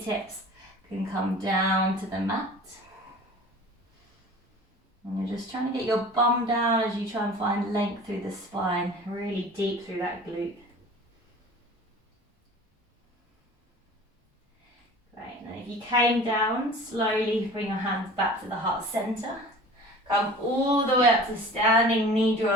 can come down to the mat. And you're just trying to get your bum down as you try and find length through the spine, really deep through that glute. Great, and then if you came down, slowly bring your hands back to the heart center. Come all the way up to standing, knee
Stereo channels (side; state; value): both; normal; correlation 0.42